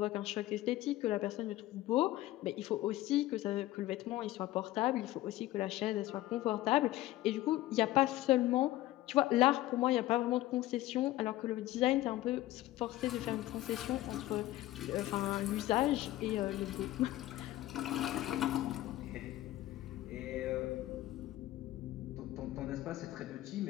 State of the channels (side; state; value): right; quieter; 16.0 dB